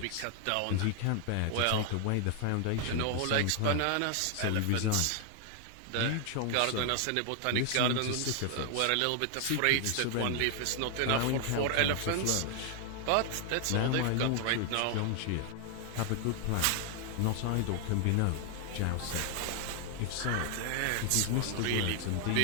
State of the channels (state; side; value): different; both; correlation 0.00